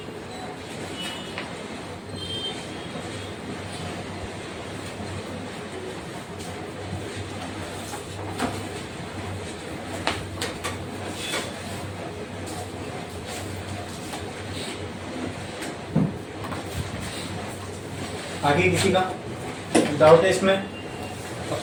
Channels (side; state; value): both; identical; correlation 1.00